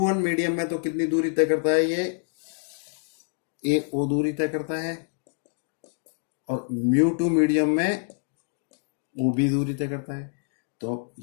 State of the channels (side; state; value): right; silent; digital silence